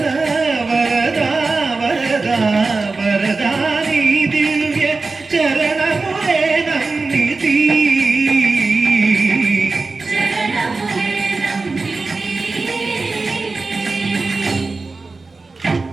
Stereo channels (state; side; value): quieter; left; 3.8 dB